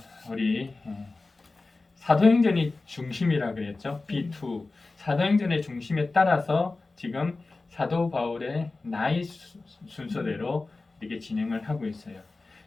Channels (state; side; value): quieter; right; 3.5 dB